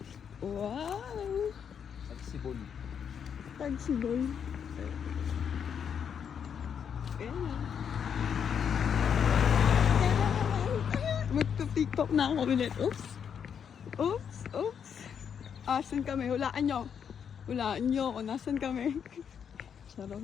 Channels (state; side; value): quieter; right; 7.6 dB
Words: Wow! Tagsibol. Tagsibol. Ayan na. Magpa-tiktok na ako ulit. Oops! Oops! Oops! Asan kami? Hulaan nyo. Hulaan nyo kung nasan kami.